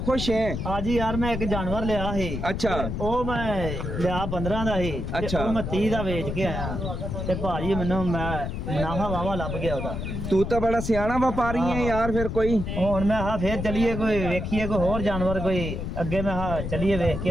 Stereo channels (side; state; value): left; noise; rumble, 4 dB below the sound